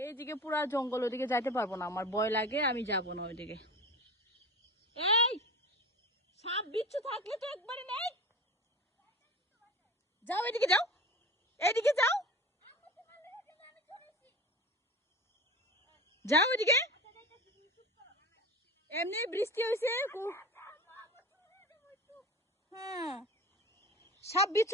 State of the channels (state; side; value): normal; both; correlation 0.33